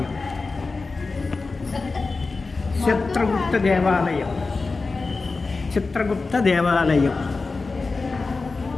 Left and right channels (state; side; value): quieter; right; 3.9 dB